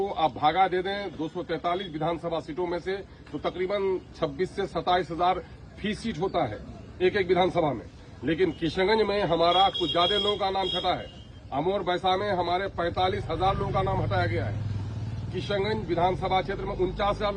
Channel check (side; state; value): both; identical; correlation 1.00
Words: आप भागा दे दें 243 विधानसभा सीटों में से, तो तकरीबन 26 से 27 हजार फी सीट होता है एक एक विधानसभा में। लेकिन किशनगंज में हमारा कुछ ज्यादा लोगों का नाम छटा है। अमोर बैसा में हमारे 45,000 लोगों का नाम हटाया गया है। किशनगंज विधानसभा क्षेत्र में 49,000